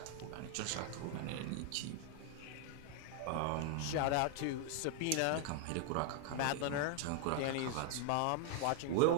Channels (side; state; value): both; different; correlation 0.00